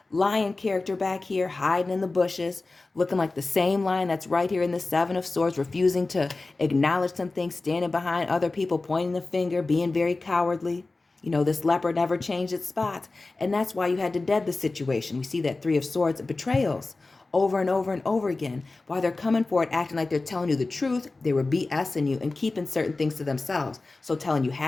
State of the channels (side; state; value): right; quieter; 3.4 dB